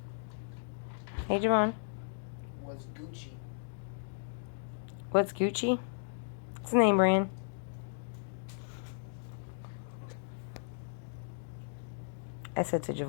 Hey, Javon. What's Gucci? What's Gucci? It's a name brand. I said to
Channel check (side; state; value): right; silent; digital silence